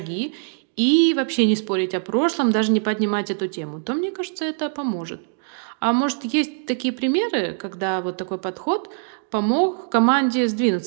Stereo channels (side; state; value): left; silent; 64 dB below the other